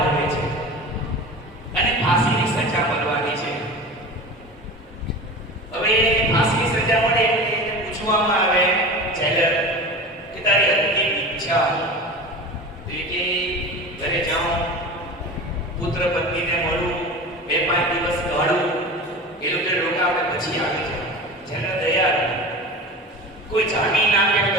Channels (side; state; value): both; normal; correlation 0.33